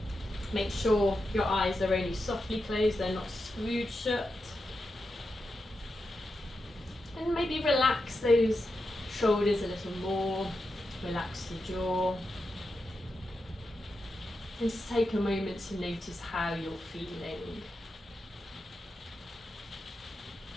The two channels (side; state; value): both; normal; correlation 0.88